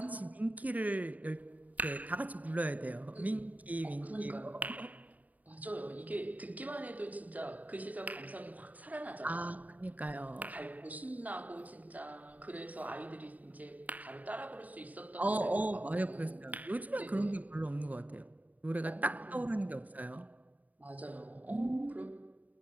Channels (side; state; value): left; late; 0.075 ms